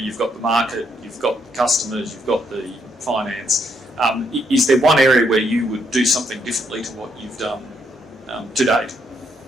got the market, you've got the customers, you've got the finance. Is there one area where you would do something differently to what you've done to date?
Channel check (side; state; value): both; normal; correlation 0.75